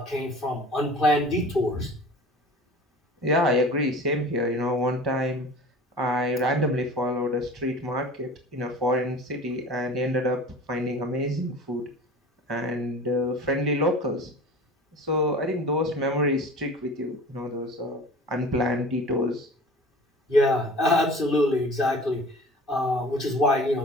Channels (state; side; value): normal; both; correlation 0.40